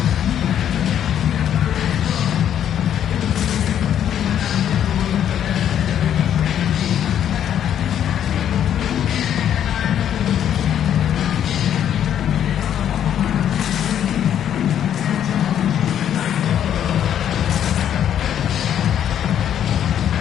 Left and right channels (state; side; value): quieter; right; 9.9 dB